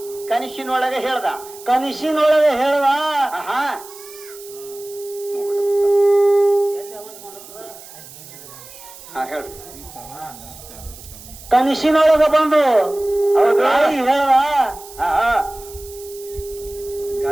ಕನಸಿನೊಳಗೆ ಹೇಳ್ದ. ಕನಸಿನೊಳಗೆ ಹೇಳ್ದ. ಆಹಾ ಹಾ ಹೇಳ್ರಿ. ಕನಸಿನೊಳಗ ಬಂದು ಹೌದು ಹೇಳ್ದ. ಆಹಾ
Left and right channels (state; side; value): noise; right; hiss, 18 dB below the sound